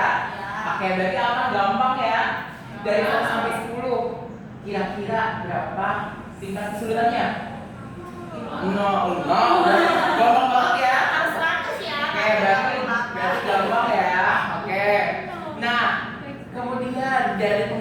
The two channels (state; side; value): identical; both; correlation 1.00